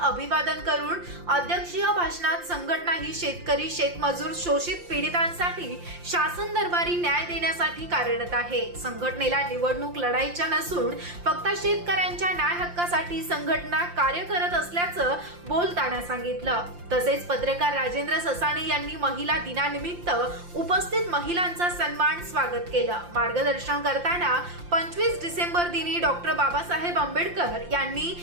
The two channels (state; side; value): late; left; 5.7 ms